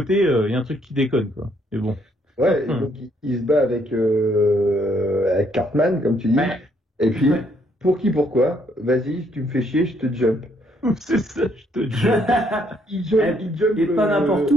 il y a un truc qui déconne, quoi. Mais bon. Ouais, et donc il se bat avec Cartman, comme tu dis. Ouais. Et puis, Ouais. pourquoi? Vas-y, tu me fais chier, je te jump. C'est ça, je te dis. Il jump, Et pas n'importe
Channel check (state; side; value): normal; both; correlation 0.69